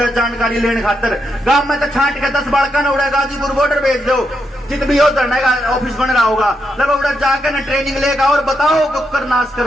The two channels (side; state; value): both; normal; correlation 0.82